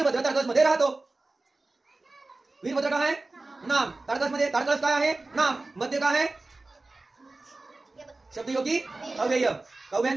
ताडकळस मध्ये राहतो. वीरभद्र काय आहे? नाम. ताडकळस मध्ये ताडकळस काय आहे? नाम. मध्ये काय आहे? शब्दयोगी अव्यय.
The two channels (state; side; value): quieter; left; 3.2 dB